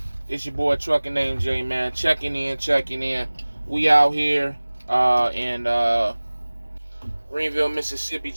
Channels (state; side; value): inverted; both; correlation -1.00